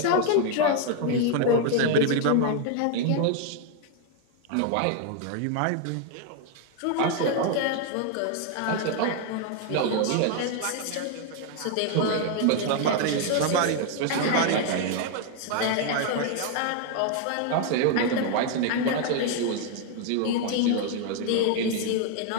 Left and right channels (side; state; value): both; different; correlation 0.00